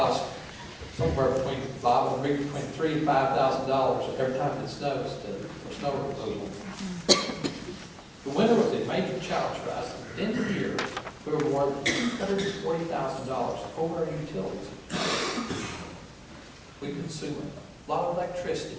somewhere between $3,000 and $5,000 every time it snows for snow removal. The winter was a major challenge for us. At the end of the year, we were more than $140,000 over our utilities. We consume a lot of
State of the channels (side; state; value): both; identical; correlation 1.00